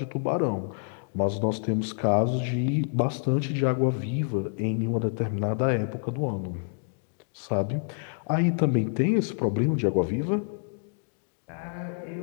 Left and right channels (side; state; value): right; silent; 60 dB below the other